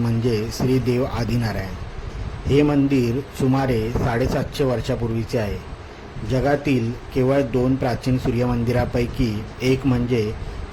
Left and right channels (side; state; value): both; identical; correlation 1.00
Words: श्री देव आदिनारायण. हे मंदिर सुमारे 750 वर्षापूर्वीचे आहे. जगातील केवळ 2 प्राचीन सूर्यमंदिरापैकी एक म्हणजे